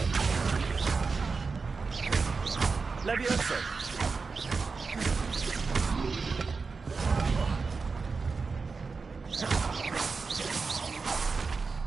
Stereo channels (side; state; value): left; quieter; 4.6 dB